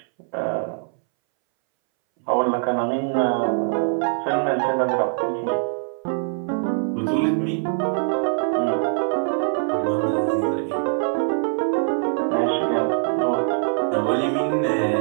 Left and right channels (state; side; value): silent; left; 64 dB below the other